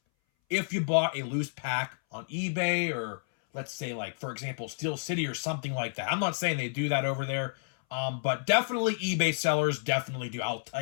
if you bought a loose pack on eBay, or let's say, like, for example, Steel City or something like that. I'm not saying they do that over there, but definitely eBay sellers definitely do. I'll tell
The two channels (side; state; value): right; silent; 58 dB below the other